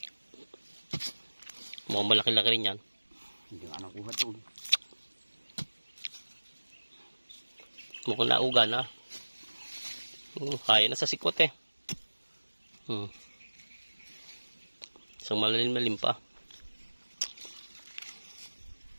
Mukhang malaki-laki rin yan. Hindi nga nakuha ito. Mukhang nauga na. Kaya na sa sikwat eh. Isang malalim pa.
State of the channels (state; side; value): inverted; both; correlation -1.00